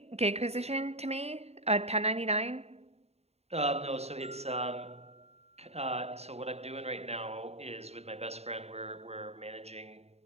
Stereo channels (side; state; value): left; late; 0.30 ms